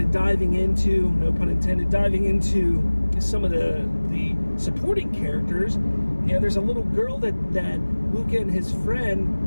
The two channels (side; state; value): both; inverted; correlation -1.00